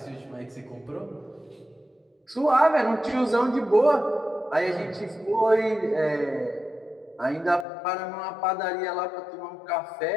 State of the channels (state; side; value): drops out; right; at 7.7 s